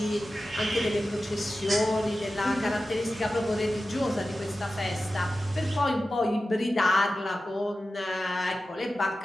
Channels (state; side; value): normal; both; correlation 0.94